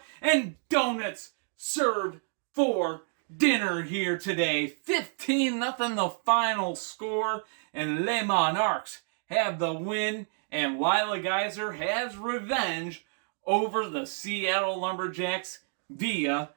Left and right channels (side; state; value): left; silent; 58 dB below the other